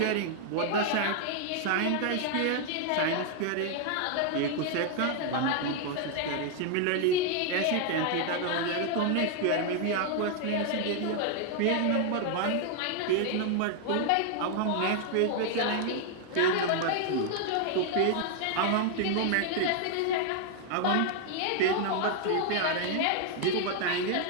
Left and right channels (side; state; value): both; different; correlation 0.00